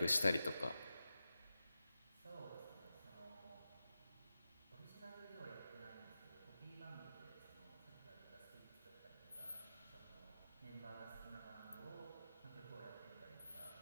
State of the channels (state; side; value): inverted; both; correlation -0.92